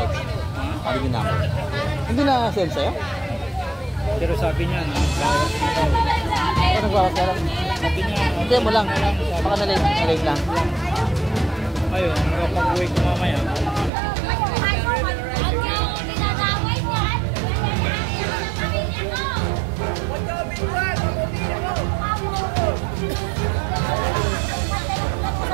Hindi ko number. Hindi na send sa'yo? Pero sabi niya, bawas na daw. Ano nagbawas ka lang? Sabi niya, Hindi mo lang. Baka na-late lang. ayun, nakapag-uwi ko mamaya.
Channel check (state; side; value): drops out; left; at 13.9 s